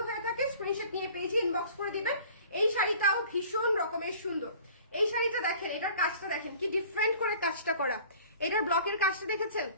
হয়ে থাকে স্ক্রিনশট নিয়ে পেজে ইনবক্স করে দিবেন। এই শাড়িটাও ভীষণ রকমের সুন্দর। এই শাড়িটা দেখেন, এটার কাজটা দেখেন কি ডিফারেন্ট করে কাজটা করা, এটার ব্লকের কাজটা দেখেছেন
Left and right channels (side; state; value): both; inverted; correlation -0.48